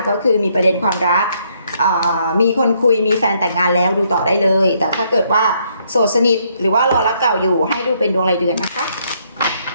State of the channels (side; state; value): both; inverted; correlation -0.71